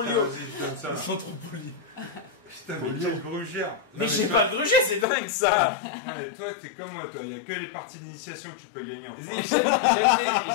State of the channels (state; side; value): drops out; right; at 5.1 s